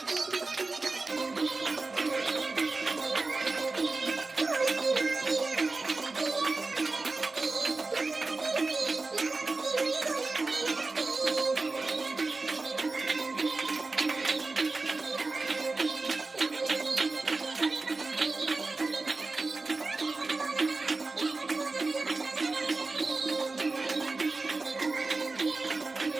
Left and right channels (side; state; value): left; quieter; 3.6 dB